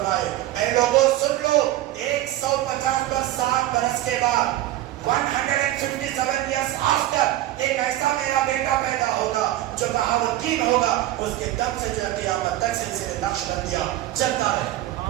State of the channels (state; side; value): quieter; left; 14.7 dB